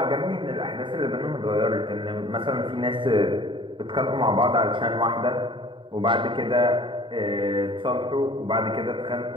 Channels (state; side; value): late; left; 0.24 ms